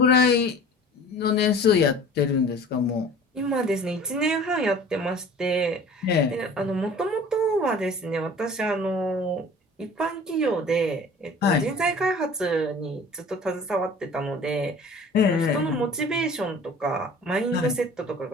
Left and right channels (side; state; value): both; normal; correlation 0.45